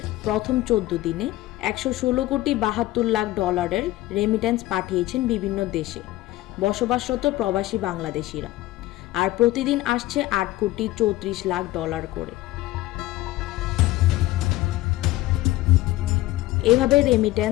প্রথম 14 দিনে 116 কোটি 72 লাখ ডলারের রেমিটেন্স পাঠিয়েছেন বিভিন্ন দেশে বসবাসরত প্রবাসী বাংলাদেশিরা, আর প্রতিদিন আসছে 8 কোটি 34 লাখ ডলার করে। এভাবে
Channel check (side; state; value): right; quieter; 17.1 dB